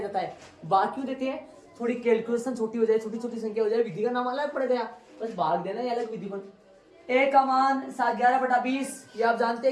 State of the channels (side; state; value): both; identical; correlation 1.00